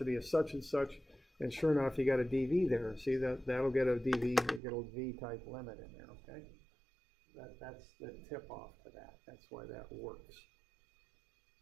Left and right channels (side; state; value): left; drops out; at 4.6 s